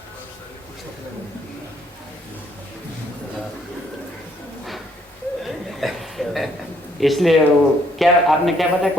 इसलिए वो क्या आपने क्या बताया,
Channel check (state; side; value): normal; both; correlation 0.68